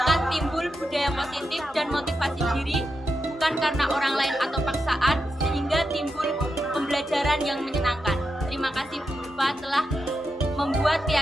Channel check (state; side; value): normal; both; correlation 0.87